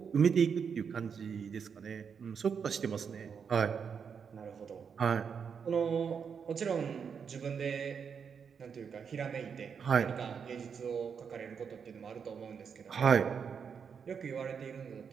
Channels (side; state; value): left; quieter; 6.6 dB